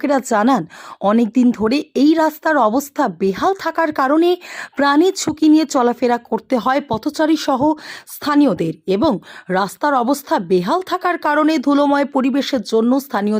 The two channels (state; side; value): identical; both; correlation 1.00